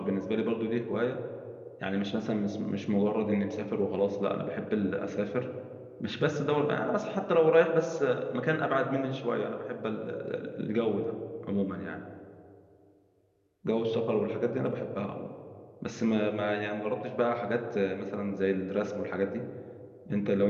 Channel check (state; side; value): identical; both; correlation 1.00